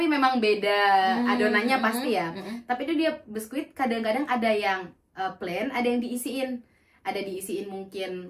memang beda adonannya pasti ya. Tapi itu dia biskuit, kadang-kadang ada yang plain, ada yang diisiin. Ada diisiin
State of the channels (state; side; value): identical; both; correlation 1.00